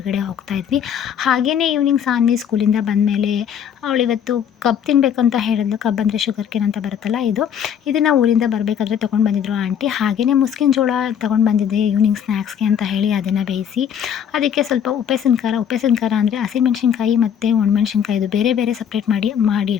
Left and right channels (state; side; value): quieter; right; 8.6 dB